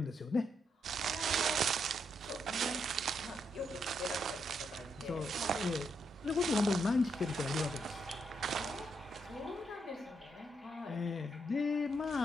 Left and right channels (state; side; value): normal; both; correlation 0.78